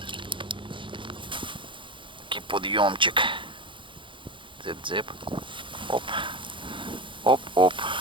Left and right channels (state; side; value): late; left; 0.24 ms